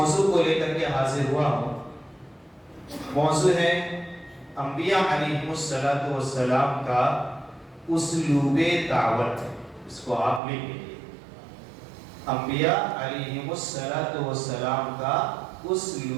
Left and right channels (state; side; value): drops out; left; at 10.4 s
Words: کو لے کر کے حاضر ہوا ہوں، موضوع ہے انبیاء علیہ السلام کا اسلوب دعوت۔ اس کو آپ لکھ لیجیے، انبیاء علیہ السلام کا